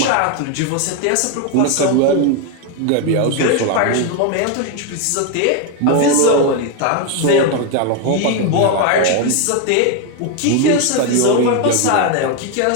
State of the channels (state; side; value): different; both; correlation 0.02